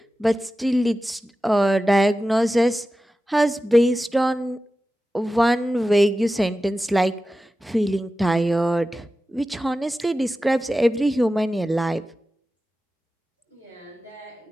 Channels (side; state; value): both; normal; correlation 0.94